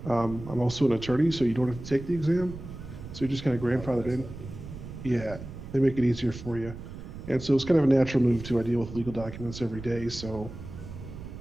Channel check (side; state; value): right; noise; rumble, 12 dB below the sound